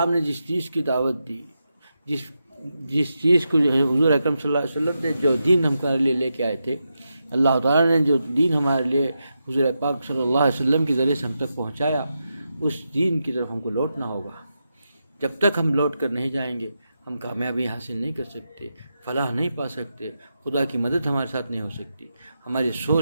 نے جس چیز کی دعوت دی، جس چیز کو جو ہے حضور اکرم صلی اللہ علیہ وسلم نے جو دین ہمارے لیے لے کے آئے تھے، اللہ تعالیٰ نے جو دین ہمارے لیے حضور پاک صلی اللہ علیہ وسلم کے ذریعے سے ہم تک پہنچایا، اس دین کی طرف ہم کو لوٹنا ہوگا۔ جب تک ہم لوٹ کر نہیں جائیں گے ہم کامیابی حاصل نہیں کر سکتے، فلاح نہیں پا سکتے، خدا کی مدد ہمارے ساتھ نہیں ہو سکتی۔ ہماری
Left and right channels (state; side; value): inverted; both; correlation -0.87